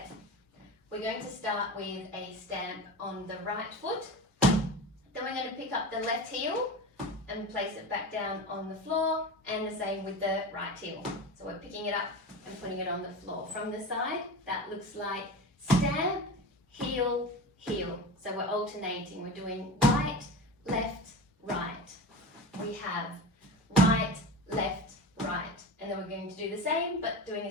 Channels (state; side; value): normal; both; correlation 0.28